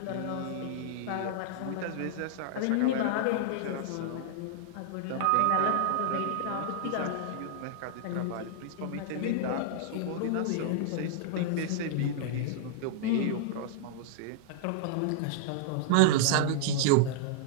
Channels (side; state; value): both; different; correlation -0.01